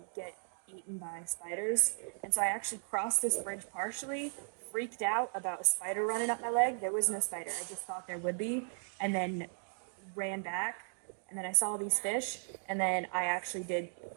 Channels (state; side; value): silent; left; digital silence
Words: get eaten by spiders. And so I actually crossed this bridge partially freaked out about a spider running up my leg. There was no spider. I just thought there would be, and then ran back. And then I saw these fish, and then I actually did